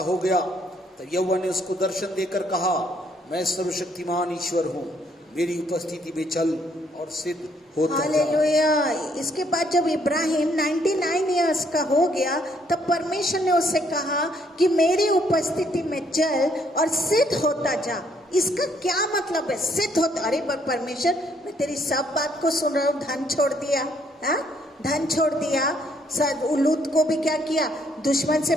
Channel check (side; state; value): both; normal; correlation 0.68